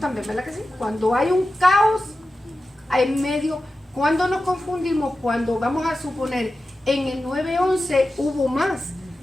¿verdad que sí? Cuando hay un caos en medio, cuando nos confundimos, cuando vamos a suponer en el 9/11 hubo más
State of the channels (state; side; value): normal; both; correlation 0.93